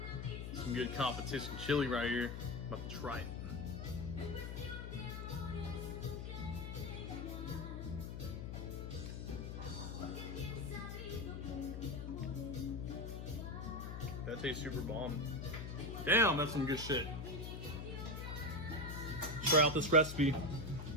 Some good competition chili right here. About to try it. That tastes super bomb. Damn, that's some good shit. Try out this recipe.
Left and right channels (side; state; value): left; noise; hum, 6 dB below the sound